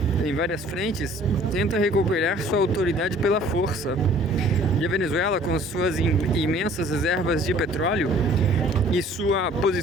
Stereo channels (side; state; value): both; normal; correlation 0.53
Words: em várias frentes, tenta recuperar sua autoridade pela força. E a Venezuela, com suas imensas reservas de petróleo e sua